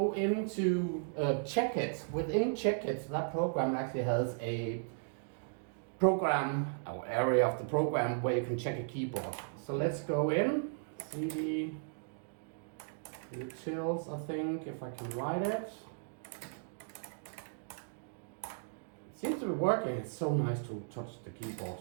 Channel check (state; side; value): silent; left; digital silence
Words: into Checkit. Within Checkit, that program actually has a program or area of the program where you can check a keyboard. So let's go in, CD utils, I think, if I can write it. It seems to be working. It's so nice to touch the keyboard.